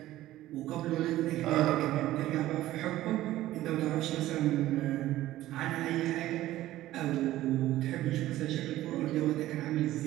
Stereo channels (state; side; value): quieter; left; 15.1 dB